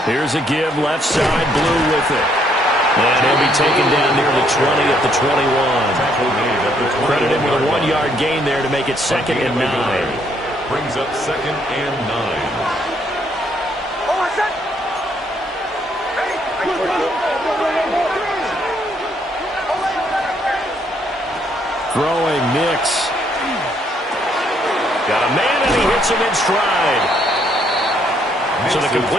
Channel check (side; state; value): both; normal; correlation 0.70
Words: Here's a give, left side, Blue with it. And he'll be taken down near the 20 at the 21. Credit him with a 1-yard gain there to make it 2nd and 9. Brings up 2nd and 9. Throwing Nix. Got a man and he hits him in stride. So the